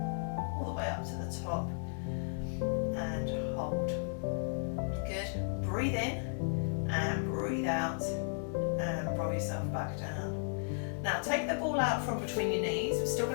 all the way up to the top, and hold. Good. Breathe in, and breathe out, and roll yourself back down. Now take the ball out from between your knees. We're still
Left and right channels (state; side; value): silent; right; digital silence